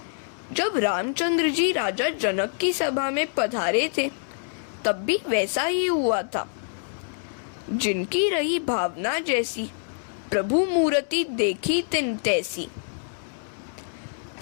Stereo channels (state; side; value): silent; right; 61 dB below the other